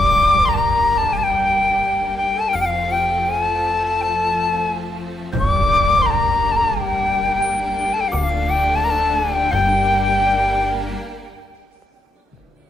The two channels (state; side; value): normal; both; correlation 0.82